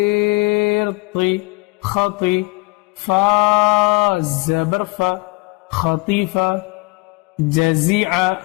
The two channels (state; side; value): quieter; right; 25.7 dB